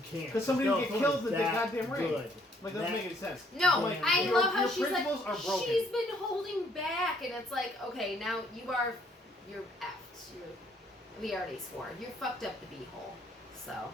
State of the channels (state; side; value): normal; both; correlation 0.66